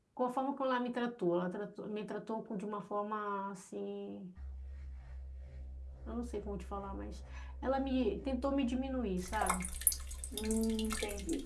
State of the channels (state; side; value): identical; both; correlation 1.00